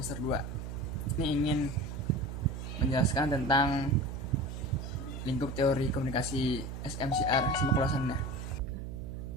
2. Ini ingin menjelaskan tentang lingkup teori komunikasi SMCR. Simak ulasannya.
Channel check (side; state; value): right; noise; hum, 7 dB below the sound